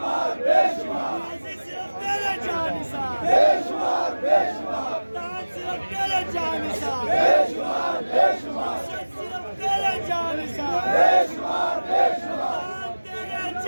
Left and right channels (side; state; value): both; inverted; correlation -1.00